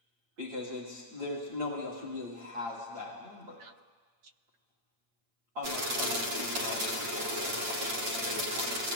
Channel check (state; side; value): late; left; 8.7 ms